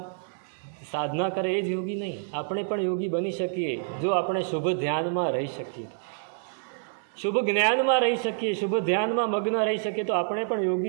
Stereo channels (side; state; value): left; silent; digital silence